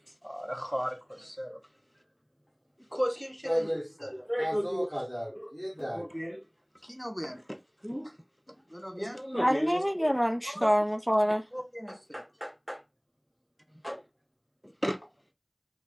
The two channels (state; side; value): identical; both; correlation 1.00